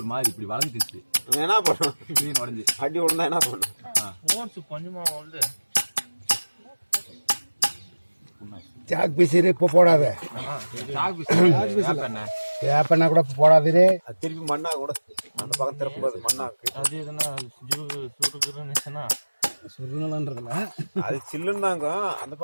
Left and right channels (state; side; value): inverted; both; correlation -1.00